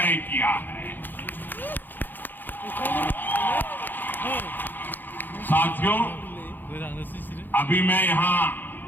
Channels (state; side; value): late; right; 0.089 ms